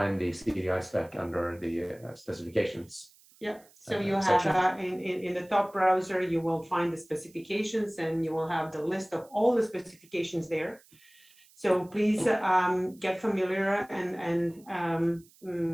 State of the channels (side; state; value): right; noise; hiss, 28 dB below the sound